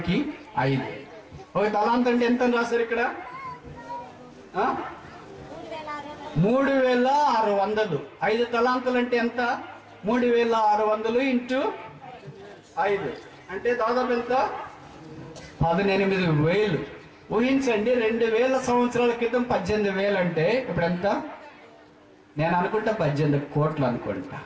5. ఒక తలాంత్ అంటే ఎంత అని రాశారు ఇక్కడ? 3600. 5 తలాంతులు అంటే ఎంత? 3600 ఇంటూ 5 అంటే దాదాపు ఎంత? 18,000. ఊహించండి, 2000 సంవత్సరాల క్రితం 18,000 అంటే ఇప్పుడు ఎంత? నేను అనుకుంటా 18 కోట్లు అనుకుంటా.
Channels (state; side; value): identical; both; correlation 1.00